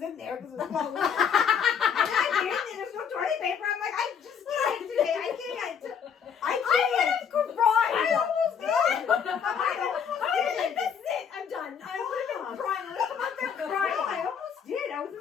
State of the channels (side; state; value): right; quieter; 7.3 dB